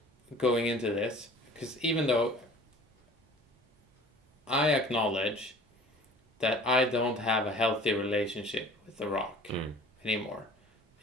going into this, because even though I acknowledge that I don't have a healthy relationship with The Rock anymore,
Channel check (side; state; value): both; normal; correlation 0.46